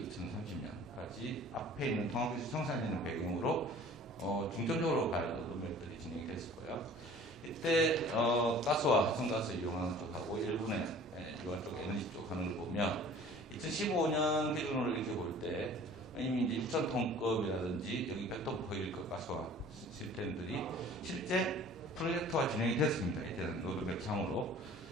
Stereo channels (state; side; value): normal; both; correlation 0.47